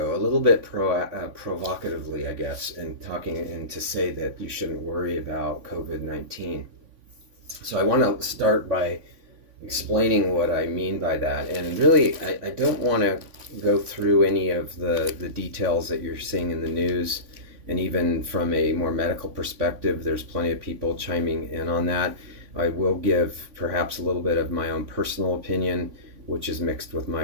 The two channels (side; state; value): left; late; 3.5 ms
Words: a little bit provocatively, I guess, and to say that you shouldn't worry about COVID-19. So I want to start by explaining what I mean by that. And really, I don't want to go through any of the details that you're seeing in the news. And even from a more medical perspective, there's plenty of people chiming in on that. I will give perhaps a little bit of my own personal opinion, which is mixed with